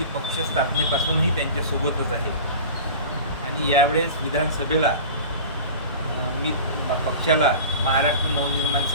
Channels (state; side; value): inverted; both; correlation -0.36